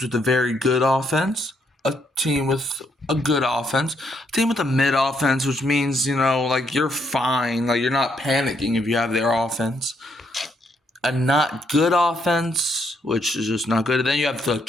with a very good offense, a team with a good offense, a team with a mid offense, which means, like you're fine, like you're not panicking if you have their offense. A not good offense, which is just not good. And then you have the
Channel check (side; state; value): both; normal; correlation 0.74